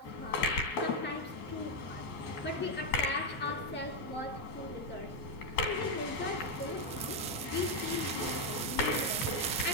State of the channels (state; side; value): normal; both; correlation 0.03